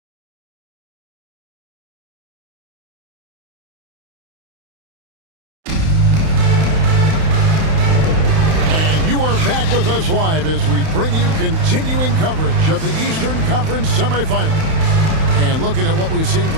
Back with us live as we bring you continuing coverage of the Eastern Conference semifinals. And looking at what we've seen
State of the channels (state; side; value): late; left; 31 ms